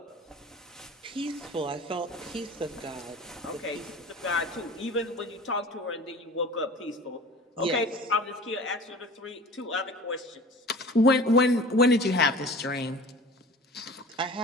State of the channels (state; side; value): normal; both; correlation 0.41